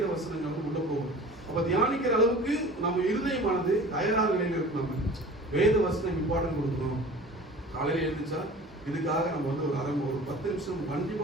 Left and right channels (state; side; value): normal; both; correlation 0.41